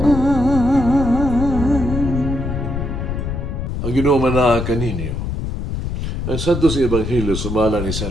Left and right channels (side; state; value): left; noise; rumble, 3 dB below the sound